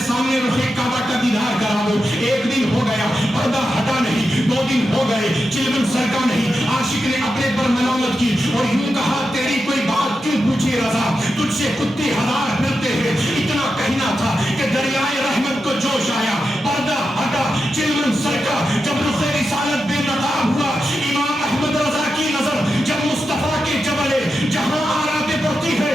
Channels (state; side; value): normal; both; correlation 0.89